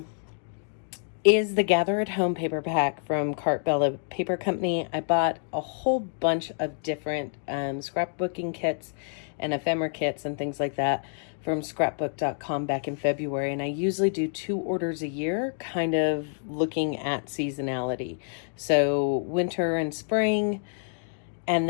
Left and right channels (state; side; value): silent; right; digital silence